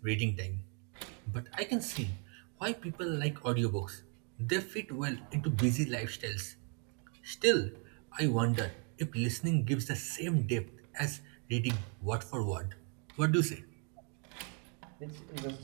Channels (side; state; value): left; quieter; 39.2 dB